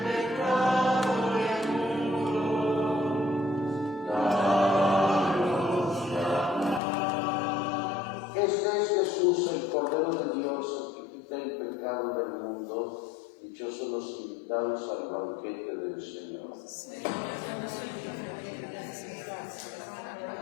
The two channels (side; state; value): right; drops out; at 6.8 s